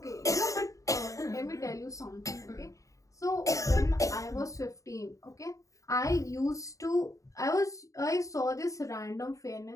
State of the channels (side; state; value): right; late; 0.16 ms